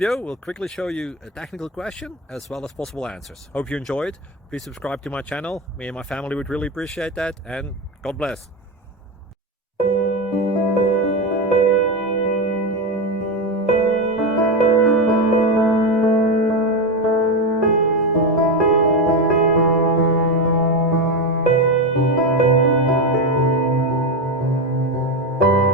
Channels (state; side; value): normal; both; correlation 0.13